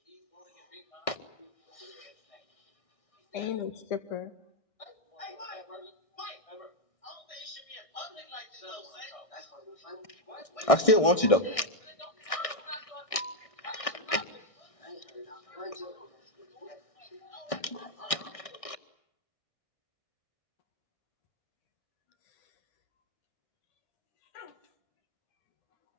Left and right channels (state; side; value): late; right; 1.6 ms